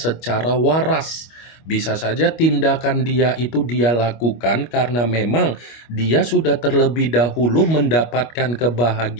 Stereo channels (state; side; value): late; right; 25 ms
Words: waras. Bisa saja tindakan dia itu dia lakukan karena memang dia sudah terlebih dahulu mendapatkan